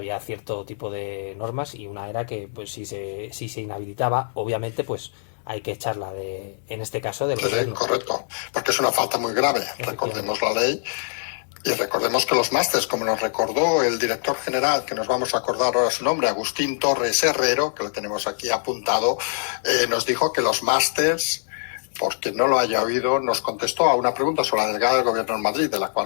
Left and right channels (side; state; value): right; silent; digital silence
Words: cierto tipo de normas y una era que pues si se inhabilitaba, obviamente pues hay que echarla en este caso del gobierno. Correcto, porque es una falta muy grave. Recordemos la ley y recordemos que los másters, como nos recordó el director general, que nos vamos a acordar ahora su nombre, Agustín Torres Herrero, que lo tenemos aquí apuntado, nos dijo que los másters, porque no lo haya oído, nos contestó a una pregunta sobre la delegada del gobierno en Madrid, de la